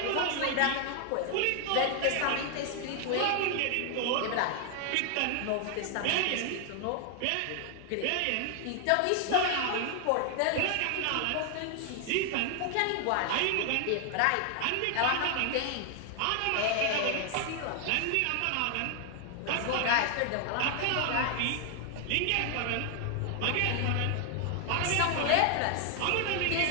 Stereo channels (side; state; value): both; different; correlation 0.00